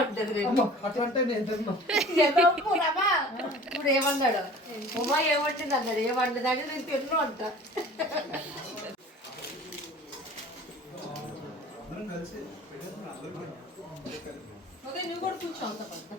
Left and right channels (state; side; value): normal; both; correlation 0.44